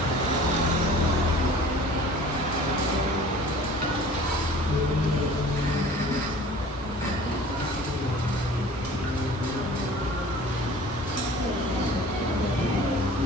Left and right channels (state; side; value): normal; both; correlation 0.46